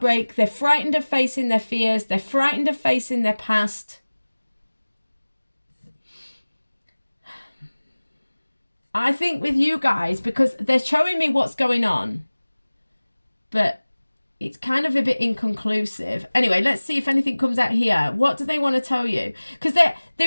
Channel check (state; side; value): inverted; both; correlation -1.00